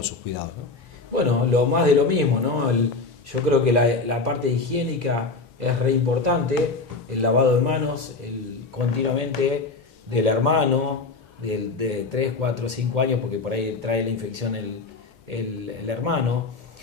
sus cuidados, ¿no? Bueno, lo más de lo mismo, ¿no? Yo creo que la parte higiénica es re importante, el lavado de manos, continuamente del hermano, de 3, 4, 5 años, porque por ahí trae la infección el hermano,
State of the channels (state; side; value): quieter; right; 3.8 dB